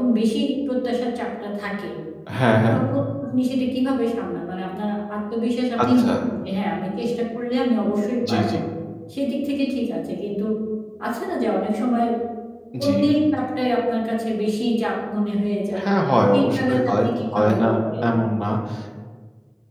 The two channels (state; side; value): identical; both; correlation 1.00